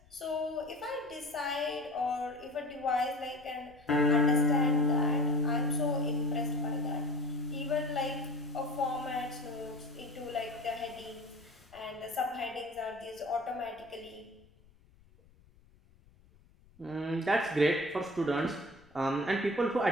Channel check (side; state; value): left; noise; rumble, 28 dB below the sound